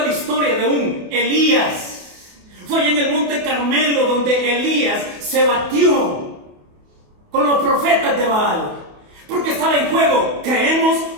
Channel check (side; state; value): left; late; 28 ms